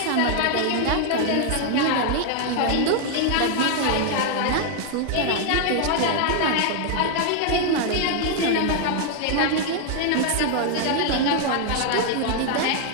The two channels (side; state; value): both; different; correlation 0.00